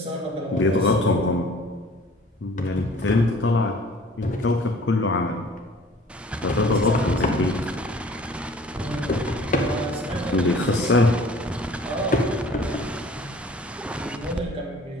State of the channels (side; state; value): both; normal; correlation 0.50